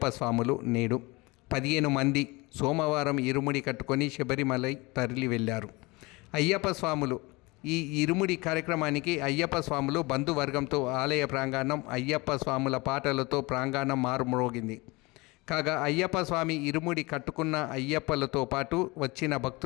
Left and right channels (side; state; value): right; quieter; 24.3 dB